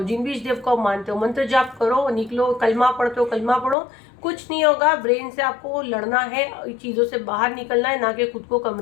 जिन भी इस देव को मानते हो मंत्र जाप करो, निकलो, कलमा पढ़ते हो कलमा पढ़ो, कुछ नहीं होगा। ब्रेन से आपको लड़ना है, चीज़ों से बाहर निकलना है, ना कि खुद को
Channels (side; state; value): right; drops out; at 3.8 s